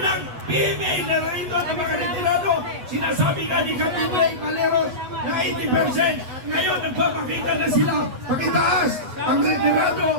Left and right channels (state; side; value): late; left; 8.1 ms